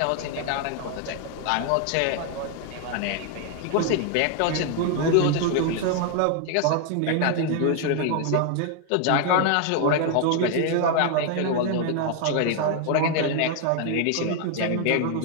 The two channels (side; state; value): both; different; correlation 0.00